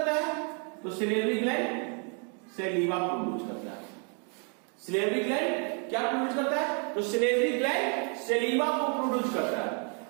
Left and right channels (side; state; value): left; quieter; 39.1 dB